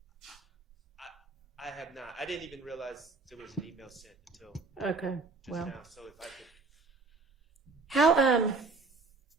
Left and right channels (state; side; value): quieter; left; 3.9 dB